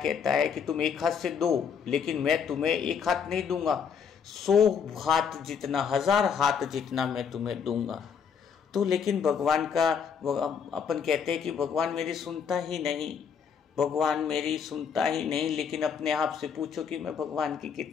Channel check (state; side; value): quieter; right; 6.8 dB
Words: है कि तुम एक हाथ से दो, लेकिन मैं तुम्हें एक हाथ नहीं दूंगा, 100 हाथ जितना, 1000 हाथ जितना मैं तुम्हें दूंगा। तो लेकिन भगवान का अपन कहते हैं कि भगवान मेरी सुनता ही नहीं, भगवान मेरी सुनता ही नहीं, लेकिन अपने आप से पूछो कि मैं भगवान की